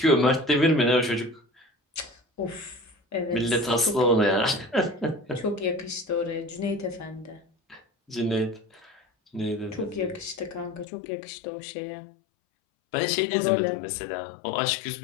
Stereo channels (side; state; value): right; drops out; at 10.9 s